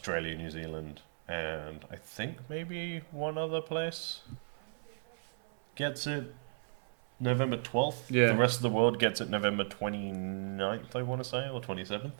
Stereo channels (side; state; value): left; silent; 54 dB below the other